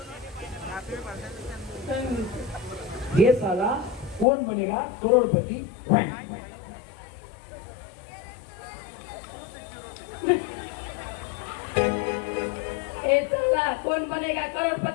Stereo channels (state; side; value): drops out; right; at 4.2 s